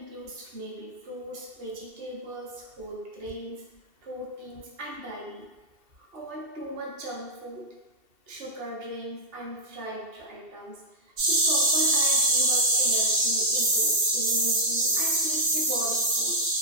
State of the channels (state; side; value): late; left; 2.7 ms